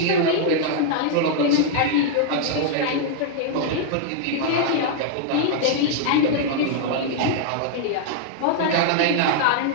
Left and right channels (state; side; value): different; both; correlation -0.01